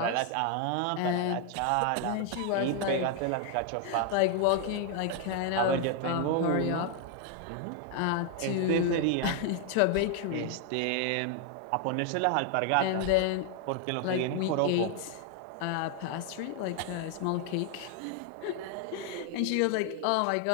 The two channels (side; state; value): both; different; correlation 0.00